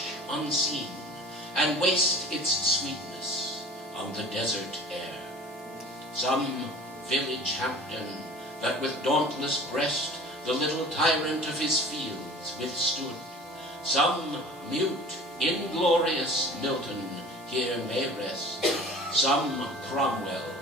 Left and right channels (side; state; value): both; normal; correlation 0.43